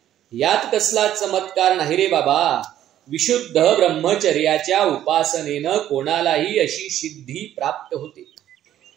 यात कसला चमत्कार नाही रे बाबा. विशुद्ध ब्रह्मचर्याच्या उपासनेनं कोणालाही अशी सिद्धी प्राप्त होते.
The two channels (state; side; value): quieter; left; 11.9 dB